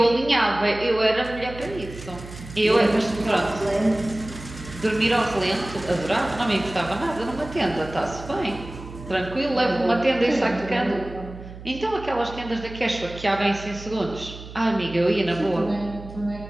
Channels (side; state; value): right; noise; hum, 14 dB below the sound